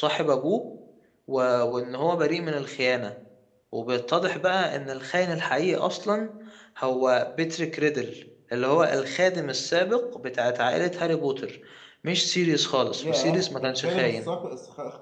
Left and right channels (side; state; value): both; identical; correlation 1.00